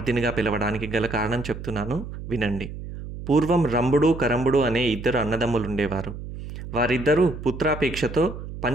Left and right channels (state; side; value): noise; right; hum, 10 dB below the sound